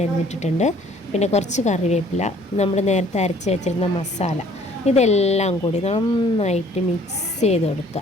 അരിഞ്ഞിട്ടിട്ടുണ്ട്. പിന്നെ കുറച്ച് കറിവേപ്പില, നമ്മൾ നേരത്തെ അരച്ച് വെച്ചിരുന്ന മസാല, ഇതെല്ലാം കൂടി നന്നായിട്ട് മിക്സ് ചെയ്ത്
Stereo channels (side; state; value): both; normal; correlation 0.57